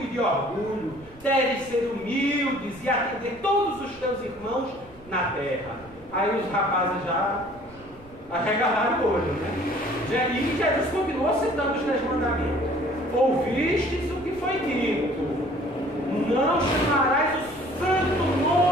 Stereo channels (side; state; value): right; noise; rumble, 24 dB below the sound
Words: de orgulho. Deves ser humildes e atender todos os teus irmãos na terra. Aí os rapazes já arregalaram o olho, né? E Jesus continuou citando os 10 mandamentos. Ouvistes o que foi dito, não chamarás o santo